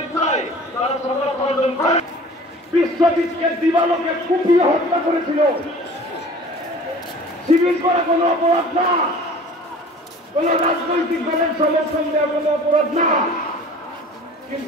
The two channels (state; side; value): normal; both; correlation 0.44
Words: তারা সরকার প্রয়োজন করে বিশ্বজিৎকে দিবালোকে কুপিয়ে হত্যা করেছিল। শিবির করা কোনো অপরাধ না, কোন রাজনৈতিক দলের সমর্থন দেওয়া কোনো অপরাধ না,